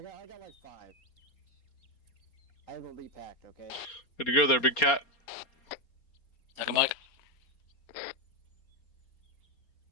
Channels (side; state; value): right; late; 4.3 ms